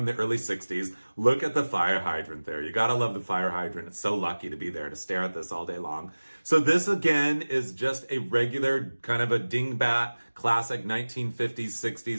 the early 60s. Look at the fire hydrant there. You gotta love the fire hydrant. It's so lucky to be there to stare at this all day long. So this again is just a regular kind of a dingbat classic 1950s,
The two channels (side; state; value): both; inverted; correlation -1.00